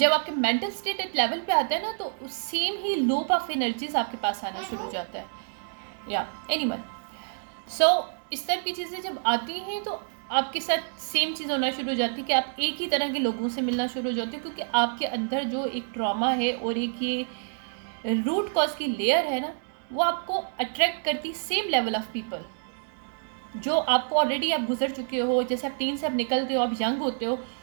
आपके मेंटल स्टेट एक लेवल पे आता है ना, तो same he loop of energies आपके पास आना शुरू हो जाता है। या एनीवन, सो इस तरह की चीज़ें जब आती हैं, तो आपके साथ सेम चीज़ होना शुरू हो जाती है कि आप एक ही तरह के लोगों से मिलना शुरू हो जाते हो, क्योंकि आपके अंदर जो एक ट्रॉमा है और एक ये रूट कॉज की लेयर है ना, वो आपको अट्रैक्ट करती सेम लेवल ऑफ पीपल जो आपको ऑलरेडी आप गुजर चुके हो। जैसे आप टीन से आप निकलते हो, आप यंग होते हो,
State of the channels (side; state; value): left; silent; digital silence